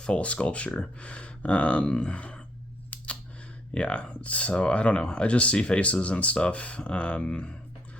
sculpture. Yeah, so I don't know. I just see faces and stuff.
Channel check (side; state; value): both; normal; correlation 0.70